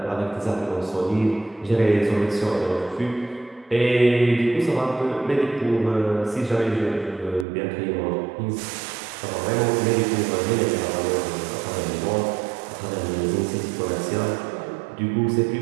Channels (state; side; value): drops out; left; at 7.5 s